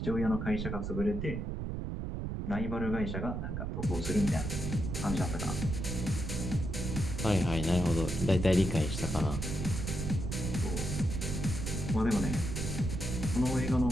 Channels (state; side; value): noise; right; rumble, 3 dB below the sound